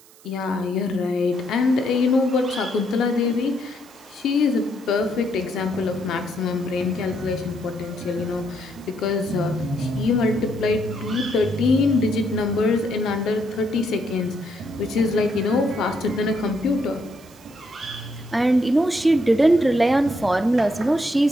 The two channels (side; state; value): right; noise; hiss, 25 dB below the sound